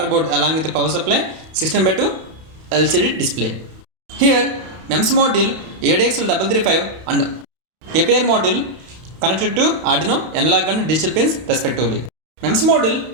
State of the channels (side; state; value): left; late; 31 ms